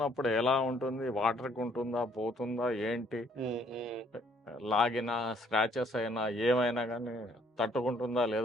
ఎలా ఉంటుంది, వాటర్కి ఉంటుందా పోతుందా ఏంటి, లాగిన స్క్రాచెస్ అయినా ఏమైనా కానీ తట్టుకుంటుందా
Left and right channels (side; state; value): both; normal; correlation 0.64